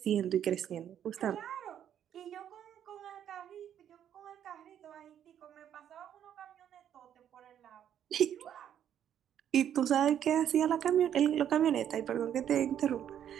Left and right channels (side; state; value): left; quieter; 9.9 dB